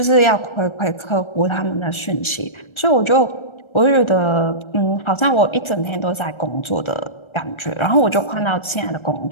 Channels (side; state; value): right; late; 1.3 ms